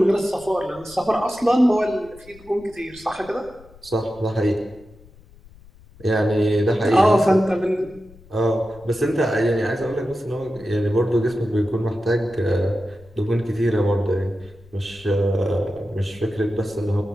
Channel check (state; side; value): noise; left; rumble, 24 dB below the sound